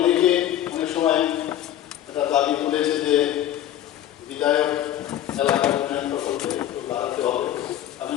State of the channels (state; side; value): quieter; right; 11.8 dB